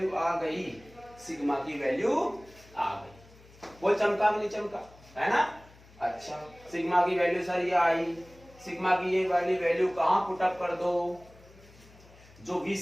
आ गई, सिग्मा की वैल्यू आ गई। बोल चमका कि नहीं चमका, है ना। अच्छा सिग्मा की वैल्यू सर ये आई, सिग्मा की ये वाली वैल्यू कहां पुटअप कर दो, जो v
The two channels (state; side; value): noise; left; hum, 24 dB below the sound